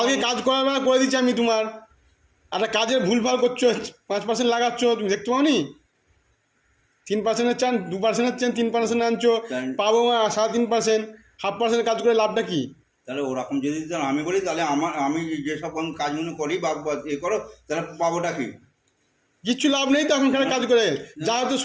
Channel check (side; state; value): both; identical; correlation 1.00